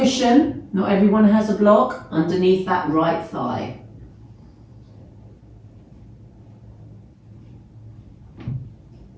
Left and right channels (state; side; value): identical; both; correlation 1.00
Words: not everyone has a block, underneath that right thigh.